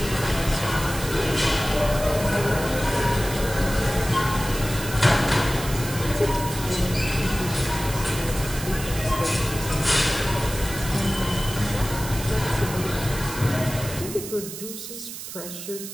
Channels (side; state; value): right; noise; hiss, 10 dB below the sound